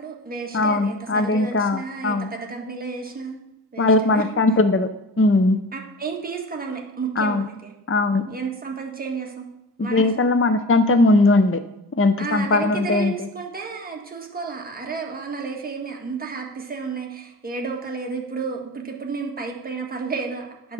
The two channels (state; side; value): normal; both; correlation 0.35